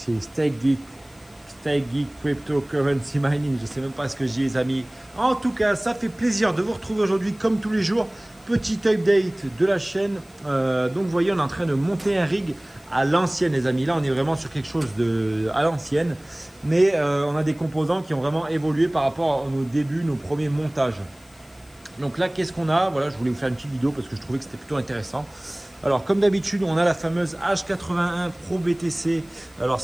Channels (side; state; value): left; noise; hiss, 28 dB below the sound